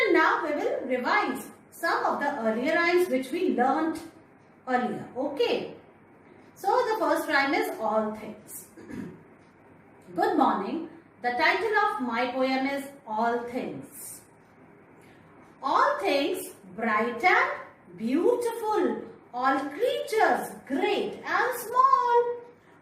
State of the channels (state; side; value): identical; both; correlation 1.00